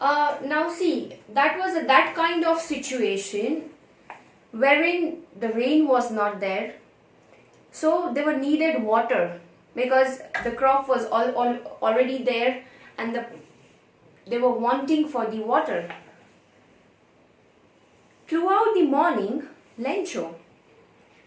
Now see, that was that kind of situation wherein the rain was not there, so they were needed water because the crop was already there and they were wanting for the water. Throughout the morning, Lencho,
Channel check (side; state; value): both; identical; correlation 1.00